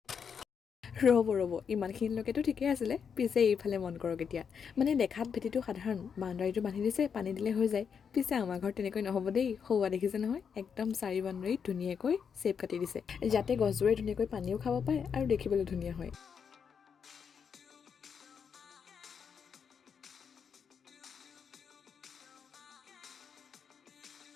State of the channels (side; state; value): right; quieter; 6.8 dB